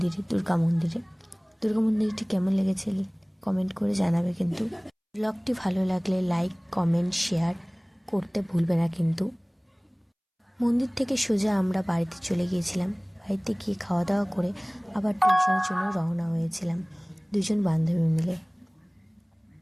দুর্গা মন্দিরটি কেমন লেগেছে কমেন্ট করে জানাবে। কিন্তু ভ্লগটি ভালো লাগলে লাইক, কমেন্ট, শেয়ার করতে ভুলবে না কিন্তু। মন্দির থেকে সোজা আমরা বাড়িতে চলে গিয়েছিলাম। বাড়িতে গিয়ে খাওয়া দাওয়া করে আবার টিউশনের জন্য রওনা হয়েছিলাম দুজন বান্ধবী মিলে।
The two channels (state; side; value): identical; both; correlation 1.00